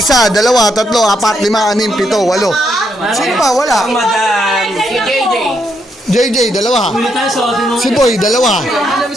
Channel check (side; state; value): both; normal; correlation 0.77